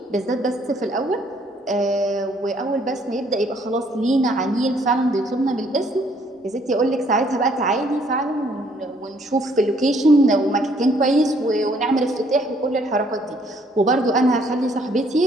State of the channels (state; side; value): normal; both; correlation 0.65